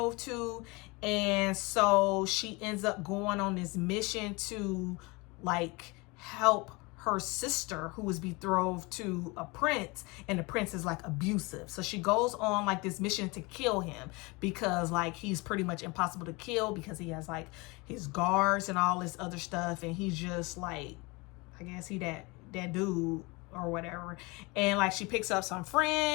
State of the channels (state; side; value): quieter; right; 26.0 dB